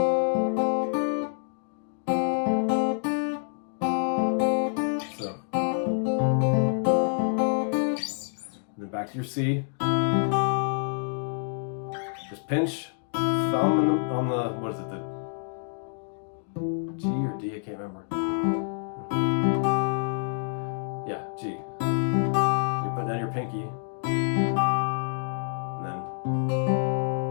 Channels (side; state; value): right; silent; digital silence